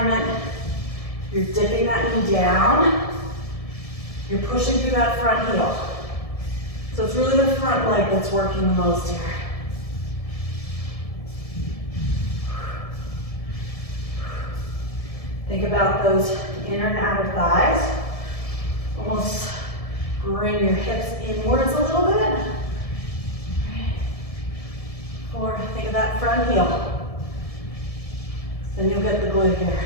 You're dipping that knee down. You're pushing through that front heel. So it's really the front leg that's working the most here. Think about those inner and outer thighs. Almost bring your hips inwards a little bit. 4, think of that front heel. Then you'll get the glute here.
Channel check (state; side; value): late; right; 1.7 ms